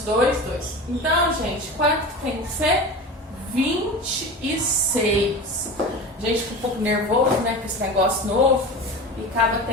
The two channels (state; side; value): normal; both; correlation 0.30